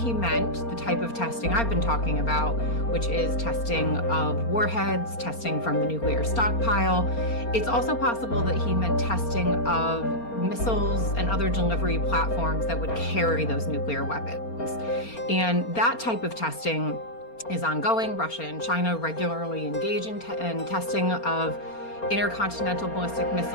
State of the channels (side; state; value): right; late; 4.3 ms